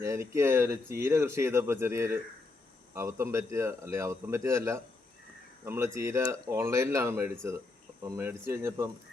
എനിക്ക് ഒരു ചീര കൃഷി ചെയ്തപ്പോൾ ചെറിയൊരു അബദ്ധം പറ്റിയതല്ല. നമ്മൾ ചീര ഓൺലൈനിലാണ് മേടിച്ചത്. അപ്പം മേടിച്ച് കഴിഞ്ഞപ്പം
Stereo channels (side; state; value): right; quieter; 3.4 dB